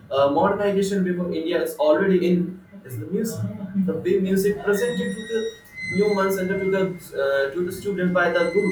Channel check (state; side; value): identical; both; correlation 1.00